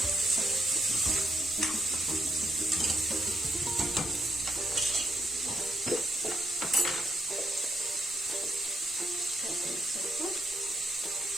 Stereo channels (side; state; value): both; normal; correlation 0.77